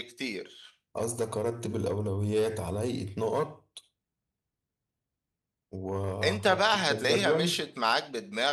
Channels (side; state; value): both; identical; correlation 1.00